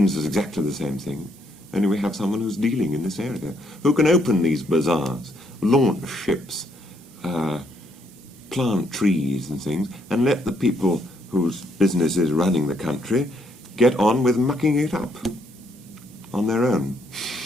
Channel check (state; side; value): normal; both; correlation 0.71